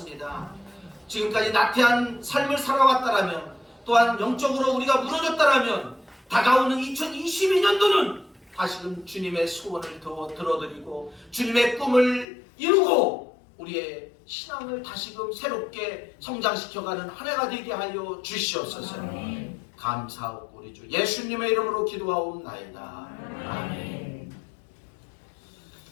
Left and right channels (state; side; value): drops out; right; at 12.2 s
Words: 지금까지 나태한 삶을 살아왔다라면 또한 영적으로 우리가 무너졌다라면 다가오는 2022년도는 다시금 주님의 소원을 더 들어드리고 주님의 꿈을 이루고 우리의 신앙을 다시금 새롭게 성장시켜가는 한 해가 되게 하여 주시옵소서. 감사하고 우리 주 예수님의 이름으로 기도하옵나이다. 아멘.